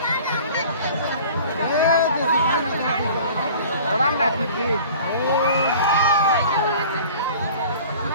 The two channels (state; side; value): inverted; both; correlation -0.45